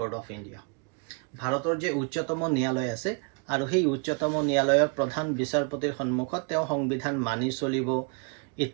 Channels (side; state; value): left; quieter; 35.4 dB